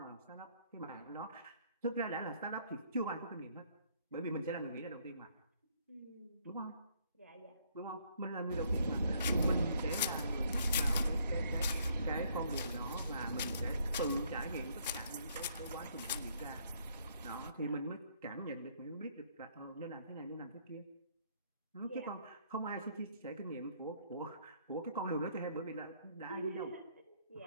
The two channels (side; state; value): both; inverted; correlation -0.66